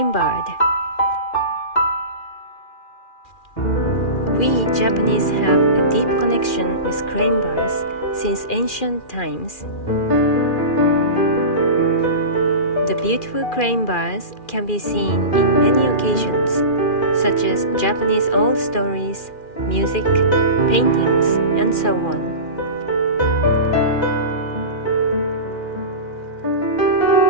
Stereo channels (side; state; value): right; late; 2.4 ms